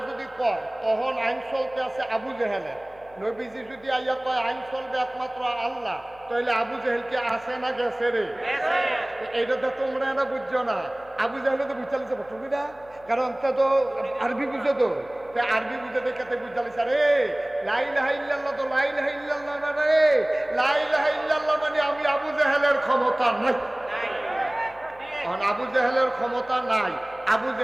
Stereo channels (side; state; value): left; noise; hum, 26 dB below the sound